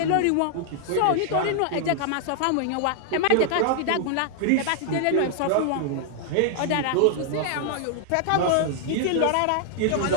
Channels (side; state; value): both; different; correlation -0.01